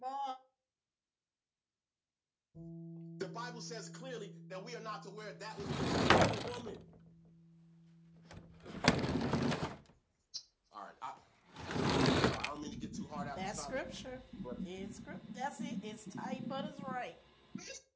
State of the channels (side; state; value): both; identical; correlation 1.00